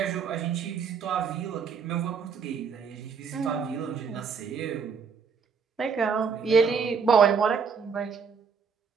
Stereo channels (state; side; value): quieter; left; 5.9 dB